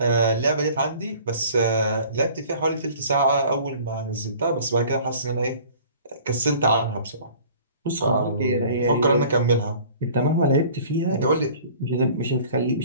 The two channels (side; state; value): both; inverted; correlation -0.48